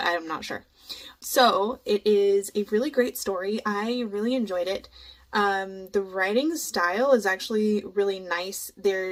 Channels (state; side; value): identical; both; correlation 1.00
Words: I'm not sure. So it is a really great story. I really enjoyed it. The writing style is actually really nice.